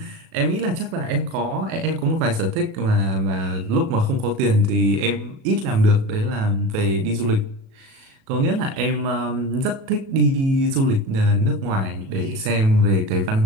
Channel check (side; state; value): left; late; 37 ms